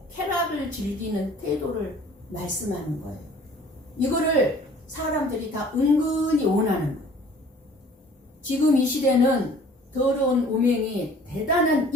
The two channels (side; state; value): both; normal; correlation 0.51